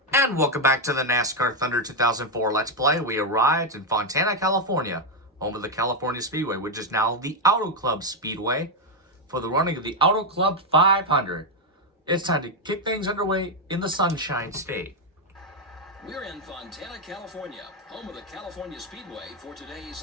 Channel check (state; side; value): normal; both; correlation 0.04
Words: And welcome back to the NASCAR Thunder 2004 Let's Play. We arrived in Fontana, California, home of the California Speedway, which is now the Auto Club Speedway, for the running of the Auto Club 500. It's time to kick things underway in the Sunshine State. We're in Fontana, California, home of the California Speedway for